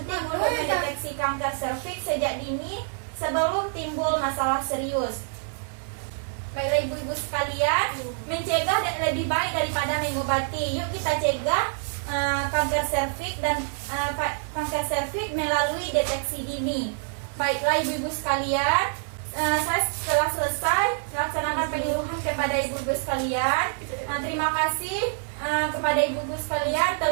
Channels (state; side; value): silent; left; 61 dB below the other